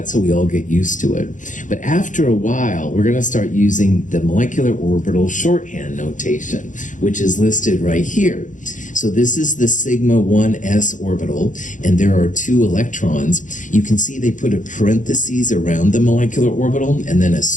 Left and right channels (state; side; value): late; right; 0.37 ms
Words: so we all get used to it. But after a while, we're going to start using the molecular orbital shorthand notation, which is listed right here. So this is the sigma 1s orbital, and there are 2 electrons. You can see they put a parentheses around the molecular orbital and then a